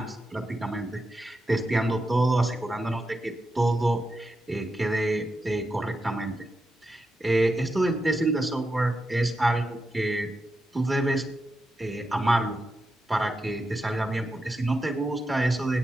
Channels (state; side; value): normal; both; correlation 0.87